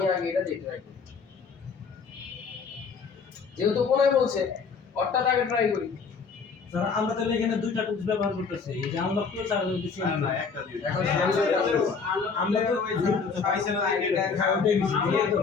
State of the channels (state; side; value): quieter; right; 5.3 dB